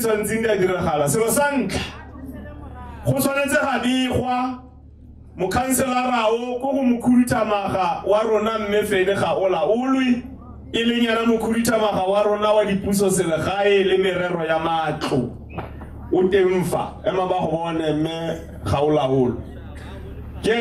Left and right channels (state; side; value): identical; both; correlation 1.00